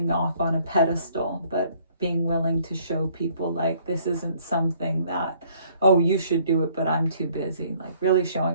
off on a pedestal, but being willing to show people like this isn't something that, oh, you should do it, but I'm too busy. Like really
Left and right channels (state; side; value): inverted; both; correlation -0.61